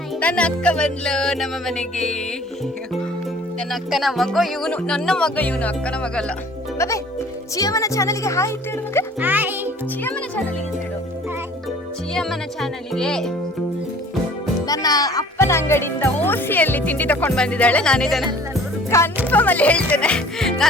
ನನ್ನ ಅಕ್ಕ ಬಂದ್ಲು ನಮ್ಮ ಮನೆಗೆ. ನನ್ನ ಅಕ್ಕನ ಮಗ ಇವನು, ನನ್ನ ಮಗ ಇವನು, ಅಕ್ಕನ ಮಗ ಅಲ್ಲ. ಬಾಬೆ ಚಿಯಮ್ಮನ ಚಾನಲ್ಗೆ ಹಾಯ್ ಅಂತ ಹೇಳು ಮಗ. ಹಾಯ್ ಚಿಯಮ್ಮನ ಚಾನಲ್ಗೆ ಹೇಳು. ಚಿಯಮ್ಮನ ಚಾನಲ್ಗೆ. ನನ್ನ ಅಪ್ಪನ ಅಂಗಡಿಯಿಂದ ಓಸಿಯಲ್ಲಿ ತಿಂಡಿ ತಕೊಂಡ್ ಬಂದಿದ್ದಾಳೆ. ನಾನು ಇದನ್ನ ಕನ್ಫರ್ಮ್ ಅಲ್ಲಿ ಹೇಳ್ತೇನೆ,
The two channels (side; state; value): both; normal; correlation 0.50